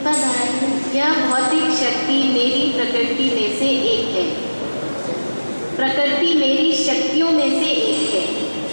दोहराइए। यह भौतिक शक्ति मेरी प्रकृति में से एक है। प्रकृति मेरी शक्तियों में से एक है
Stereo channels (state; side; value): inverted; both; correlation -1.00